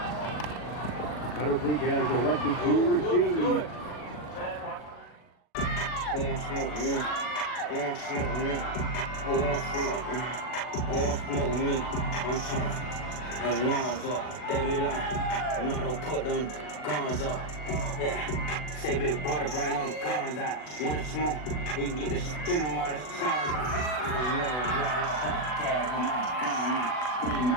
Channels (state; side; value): late; right; 40 ms